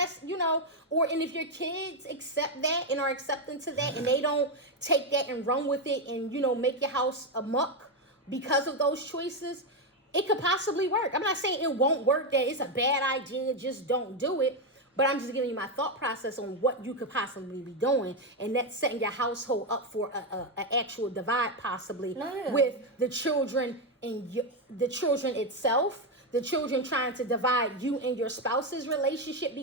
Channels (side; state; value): both; normal; correlation 0.07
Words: and if your kids accept that and are accepting to that, and they don't take that and run with it and, make your house a muck because of those choices, it could possibly work. I'm not saying it won't work, that it's a bad idea, just don't do it. But I'm just giving you my thought process on what you could possibly be doing, and that's setting your household up for a actual divide, possibly with the children and the children itself. The children trying to divide you and your spouse's relationship